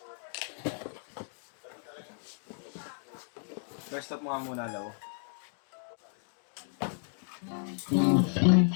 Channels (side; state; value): right; silent; 56 dB below the other